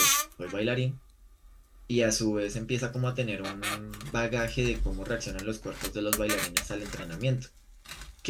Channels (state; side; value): identical; both; correlation 1.00